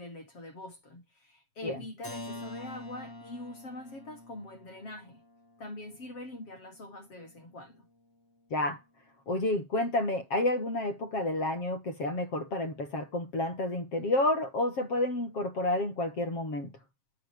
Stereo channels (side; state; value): right; late; 7.4 ms